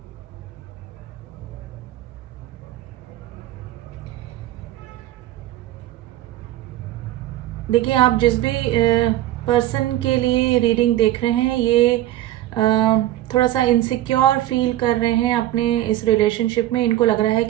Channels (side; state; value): left; quieter; 14.2 dB